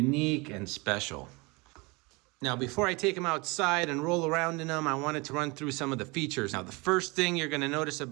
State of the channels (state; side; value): quieter; left; 26.6 dB